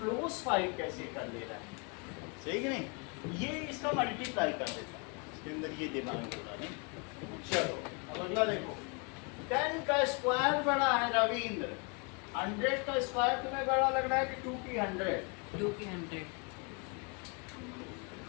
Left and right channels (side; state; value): right; quieter; 32.7 dB